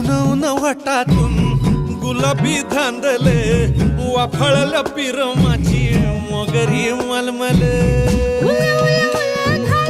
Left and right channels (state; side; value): identical; both; correlation 1.00